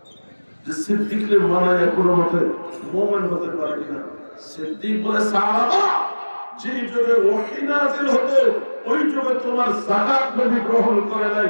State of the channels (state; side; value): inverted; both; correlation -1.00